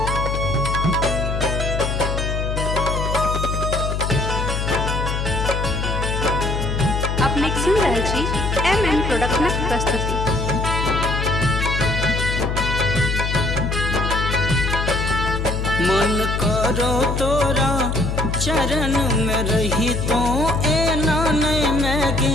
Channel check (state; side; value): noise; left; hum, 1 dB below the sound